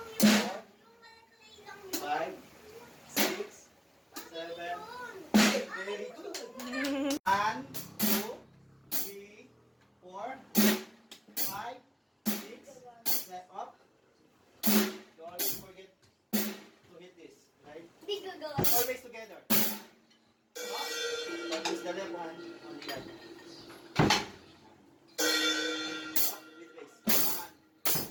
yun. Yung malaki lang yun. 5, 6, 7. Very good. 1, 2, 3, 4, 5, 6, 7. Up. Don't always forget to hit this. Right? Hindi gagawa. Always together. Up. Use the left hand on the other. Up with raise. 1.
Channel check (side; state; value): both; identical; correlation 1.00